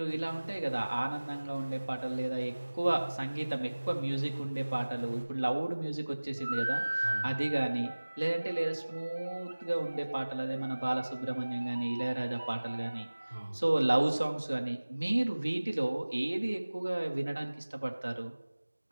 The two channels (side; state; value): both; inverted; correlation -1.00